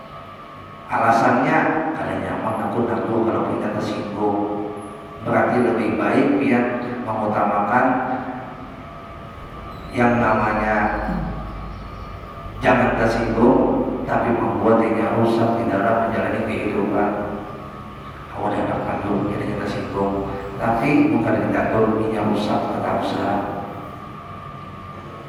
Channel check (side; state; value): both; identical; correlation 1.00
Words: Alasannya kadang nyaman aku kalau kita tersinggung, berarti lebih baik dia mengutamakan yang namanya jangan tersinggung, tapi membuat dirinya rusak di dalam menjalani kehidupan. Awal dapat kandung, jadi kita singgung, tapi bukan kita turunnya rusak, tetap usaha.